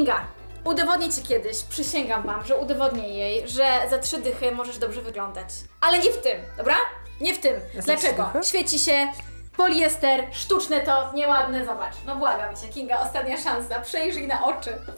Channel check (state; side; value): inverted; both; correlation -1.00